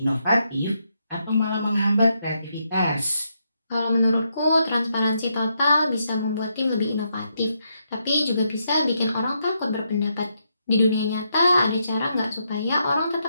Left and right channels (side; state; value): both; inverted; correlation -0.80